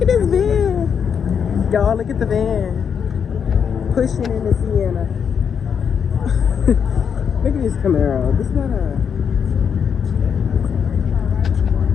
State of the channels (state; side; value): quieter; right; 7.2 dB